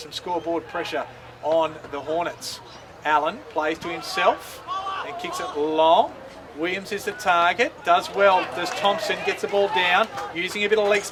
some scoreboard pressure on the Hornets. Allen plays to himself and kicks it long. Williams is the target, does well, does Thompson, gets the ball down, using a bit of leg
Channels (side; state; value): both; identical; correlation 1.00